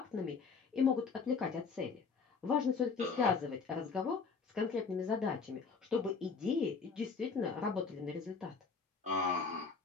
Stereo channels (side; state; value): right; quieter; 5.1 dB